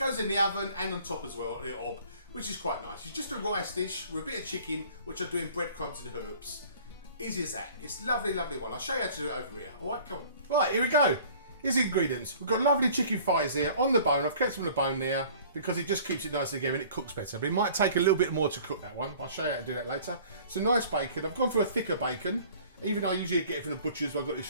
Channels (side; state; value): both; inverted; correlation -0.50